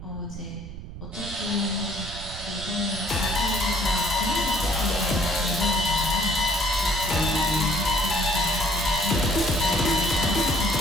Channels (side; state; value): right; noise; rumble, 11 dB below the sound